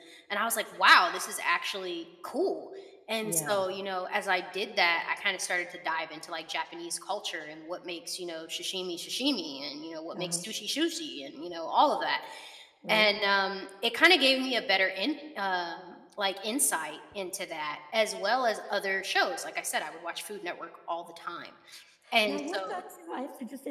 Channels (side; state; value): both; identical; correlation 1.00